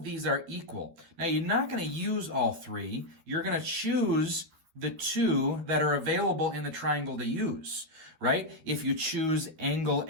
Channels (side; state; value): left; late; 12 ms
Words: these are equal. Now, you're not going to use all three. You're going to choose the two that are available in the triangle to use, right? If you choose angle